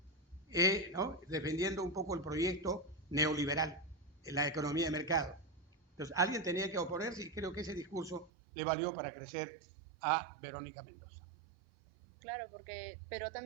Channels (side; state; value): left; drops out; at 8.3 s